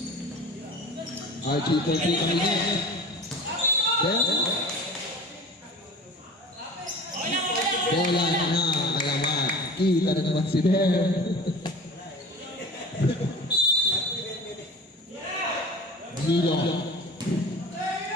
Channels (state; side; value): normal; both; correlation 0.38